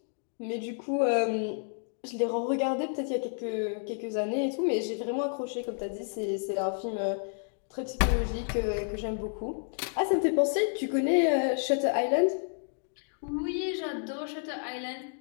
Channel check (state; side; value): silent; right; digital silence